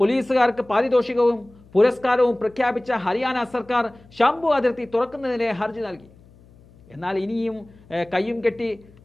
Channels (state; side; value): noise; left; hum, 26 dB below the sound